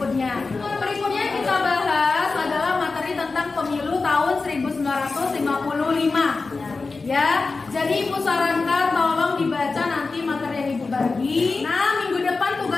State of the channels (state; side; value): quieter; right; 4.0 dB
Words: Berikutnya kita bahas adalah materi tentang pemilu tahun 1955. Ya, jadi Ibu sarankan tolong dibaca nanti materi yang Ibu bagi. Nah, minggu depan